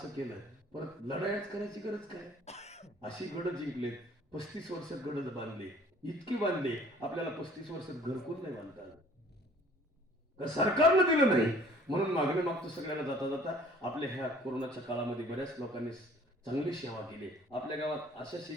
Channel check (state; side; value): normal; both; correlation 0.52